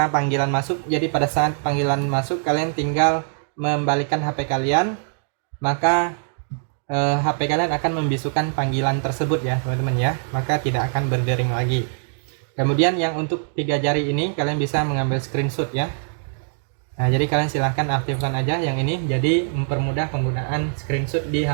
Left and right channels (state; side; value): silent; left; digital silence